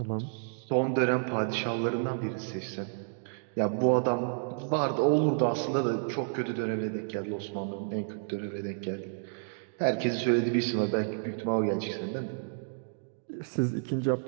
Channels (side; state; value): left; silent; digital silence